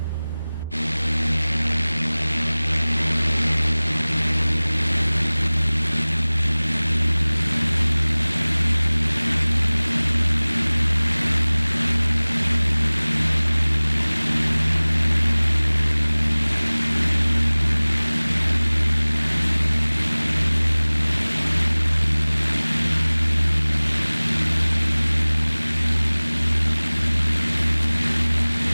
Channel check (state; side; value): inverted; both; correlation -1.00